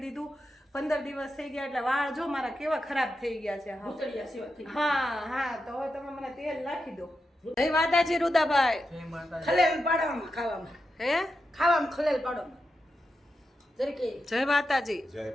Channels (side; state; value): both; normal; correlation 0.88